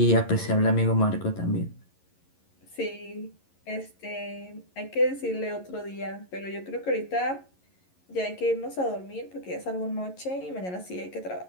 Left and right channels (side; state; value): right; late; 11 ms